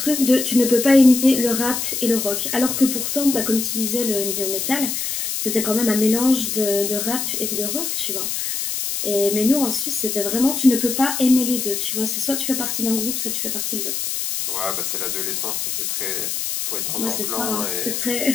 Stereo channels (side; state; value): left; noise; hiss, 2 dB below the sound